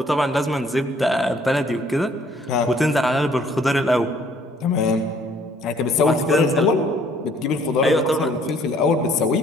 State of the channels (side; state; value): both; normal; correlation 0.61